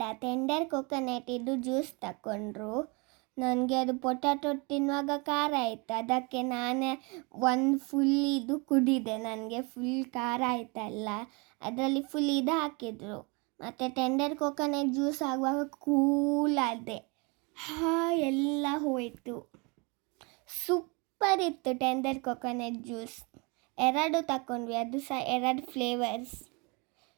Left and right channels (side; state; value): left; quieter; 30.2 dB